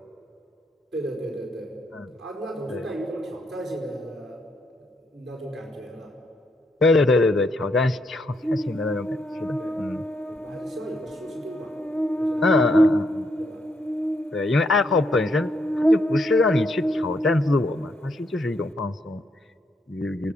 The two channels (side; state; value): both; normal; correlation 0.76